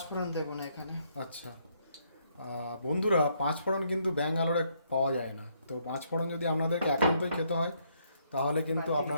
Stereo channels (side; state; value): both; inverted; correlation -0.72